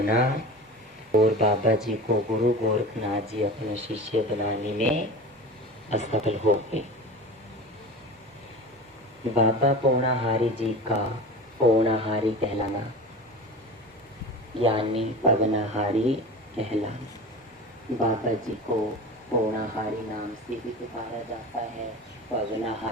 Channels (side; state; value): both; normal; correlation 0.32